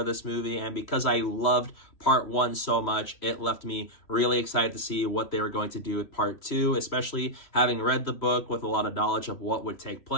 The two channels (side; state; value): right; late; 3.0 ms